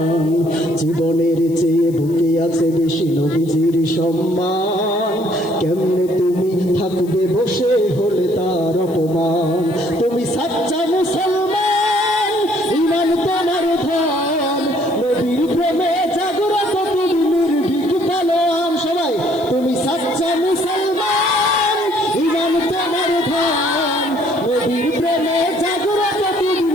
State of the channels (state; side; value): noise; left; hiss, 24 dB below the sound